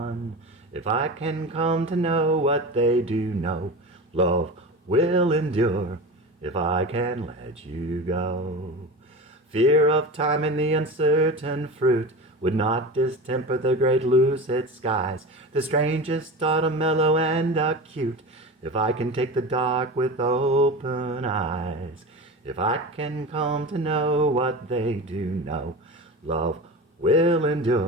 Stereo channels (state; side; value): normal; both; correlation 0.29